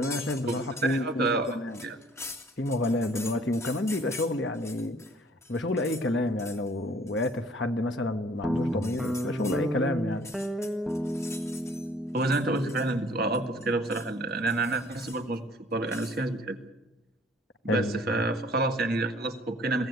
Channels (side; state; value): both; normal; correlation 0.56